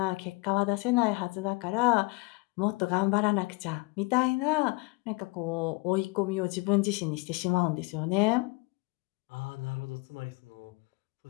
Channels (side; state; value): right; quieter; 27.3 dB